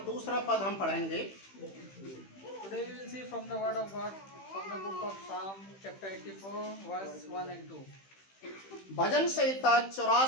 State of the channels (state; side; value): late; right; 15 ms